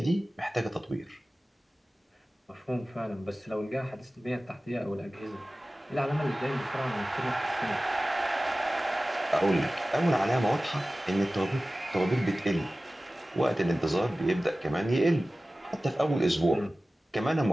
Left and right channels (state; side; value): normal; both; correlation 0.97